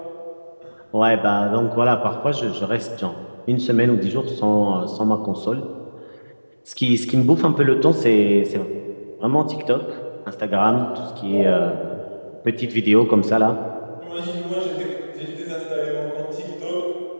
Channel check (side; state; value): both; inverted; correlation -1.00